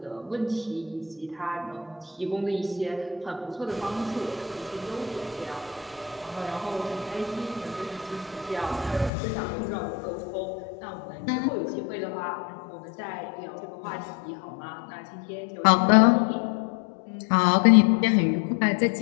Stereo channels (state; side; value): drops out; right; at 9.1 s